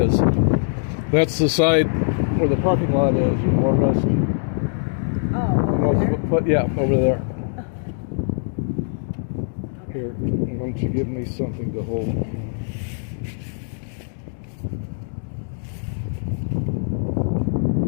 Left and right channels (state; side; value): silent; right; digital silence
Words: that's the side where the parking lot is. You more or less. Oh, over there? But yeah, over there. Here, why don't you give me something to hold?